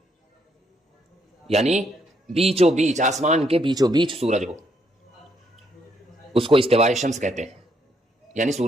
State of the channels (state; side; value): normal; both; correlation 0.73